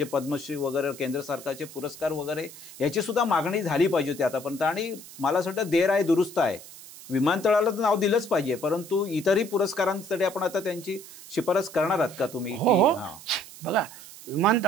पद्मश्री वगैरे, केंद्र सरकारचे पुरस्कार वगैरे, याची सुद्धा मागणी झाली पाहिजे होती आतापर्यंत. आणि मला असं वाटतं देर आहे दुरुस्त आहे. विमानतळाला तर नाव दिलंच पाहिजे, परंतु इतरही पुरस्कारांसाठी आपण आता त्यांची शिफारस करणार आहात का तुम्ही? हो. बघा,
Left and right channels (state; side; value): noise; right; hiss, 17 dB below the sound